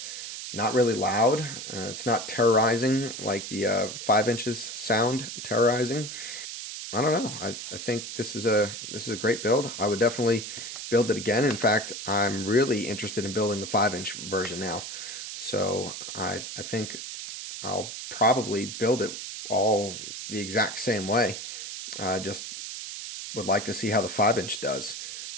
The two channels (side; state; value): right; noise; hiss, 8 dB below the sound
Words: not really loud. It's not terrorizing like the 5 inches sound terrorizing. I don't know. I think this is a great build. I would definitely build it again. In fact, I'm really interested in building the 5-inch version now. So I think I'll probably build it all the exact same way. Just would like to see how the 5-inch does.